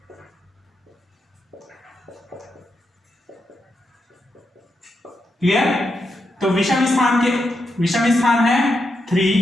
क्लियर। तो विषम स्थान है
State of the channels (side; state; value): both; normal; correlation 0.84